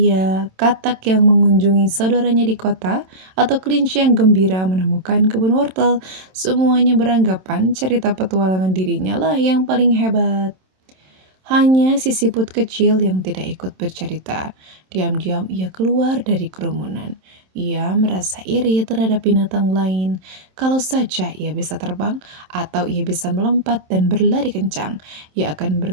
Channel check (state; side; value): late; left; 27 ms